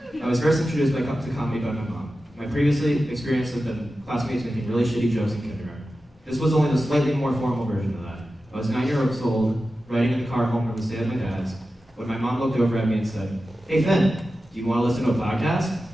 I was first introduced to comedy by my mom. My previous experience had been classmates making really shitty jokes in kindergarten. This was only the slightly more formal version of that. I was 9 years old, riding in the car home from the stay at my dad's, when my mom looked over at me and said, "Hey Finn, do you want to listen to a podcast?"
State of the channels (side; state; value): both; normal; correlation 0.93